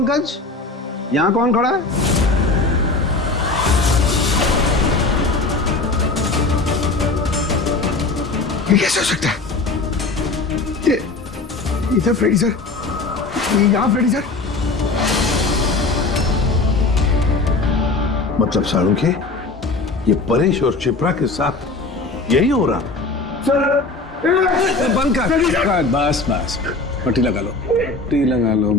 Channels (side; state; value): right; quieter; 3.5 dB